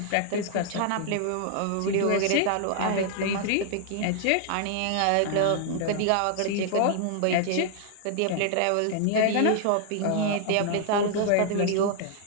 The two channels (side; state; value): both; different; correlation 0.00